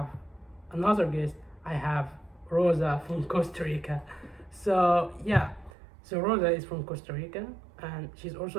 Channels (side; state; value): left; drops out; at 5.7 s